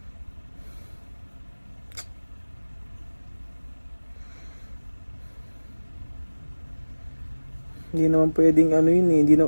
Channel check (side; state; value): both; inverted; correlation -1.00